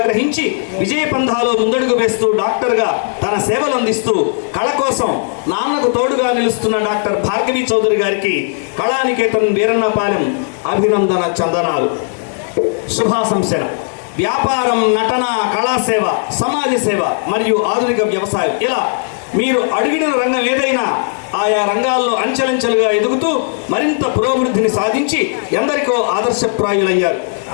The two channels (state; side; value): silent; right; 69 dB below the other